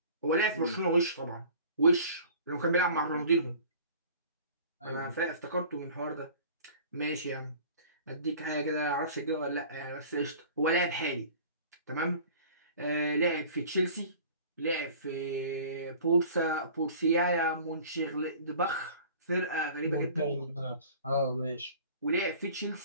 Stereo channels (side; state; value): both; inverted; correlation -0.45